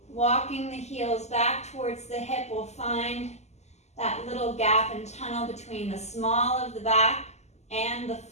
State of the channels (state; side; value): late; right; 0.33 ms